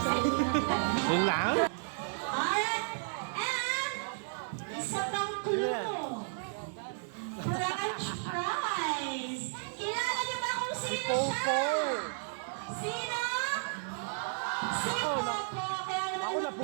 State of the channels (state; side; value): silent; left; 56 dB below the other